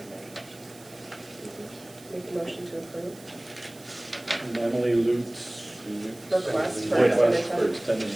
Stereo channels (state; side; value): noise; right; hiss, 22 dB below the sound